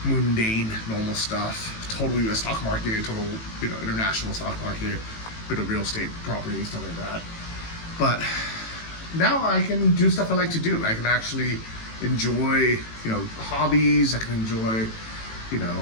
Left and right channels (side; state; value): right; late; 18 ms